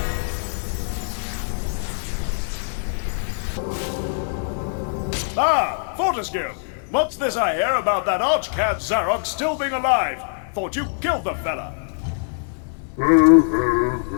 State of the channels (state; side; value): silent; right; digital silence